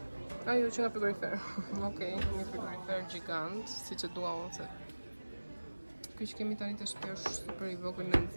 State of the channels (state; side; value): inverted; both; correlation -1.00